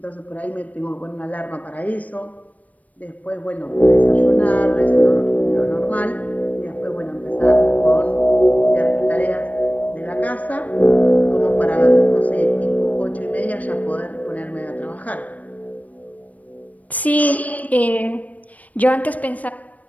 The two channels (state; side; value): late; right; 0.072 ms